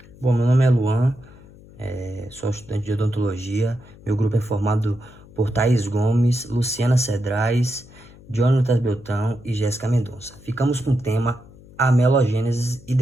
Bom, meu nome é Luan, sou estudante de odontologia. Meu grupo é formado por Thaís Gomes, Luciana Cedrais, Jonatas Beltrão e Jéssica Mendonça. Ficamos com o tema amelogênese e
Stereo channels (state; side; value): noise; left; hum, 22 dB below the sound